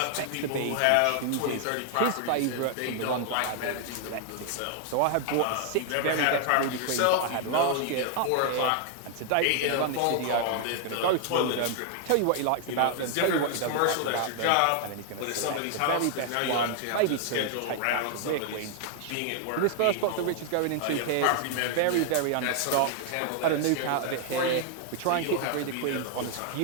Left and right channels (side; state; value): both; different; correlation 0.00